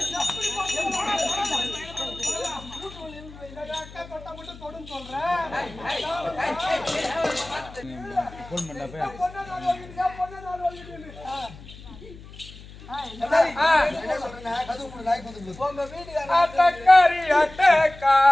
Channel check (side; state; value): left; noise; hum, 18 dB below the sound